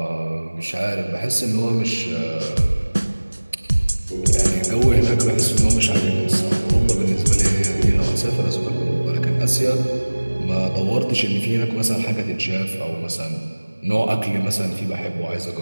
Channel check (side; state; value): both; inverted; correlation -1.00